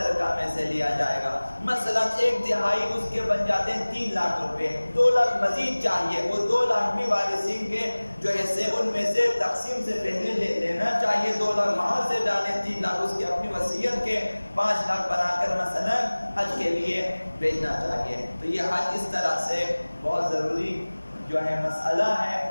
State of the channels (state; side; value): inverted; both; correlation -1.00